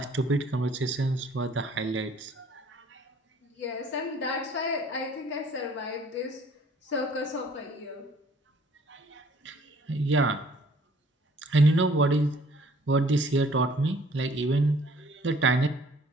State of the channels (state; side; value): normal; both; correlation 0.57